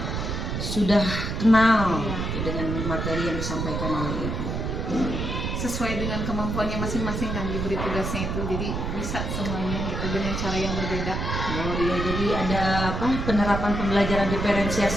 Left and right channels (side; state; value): right; noise; rumble, 3 dB below the sound